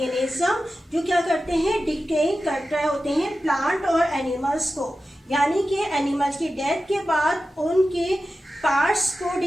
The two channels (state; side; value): normal; both; correlation 0.93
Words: जो क्या करते हैं, डिकेइंग कर रहे होते हैं प्लांट और एनिमल्स को। यानी कि एनिमल्स की डेथ के बाद उनके पार्ट्स को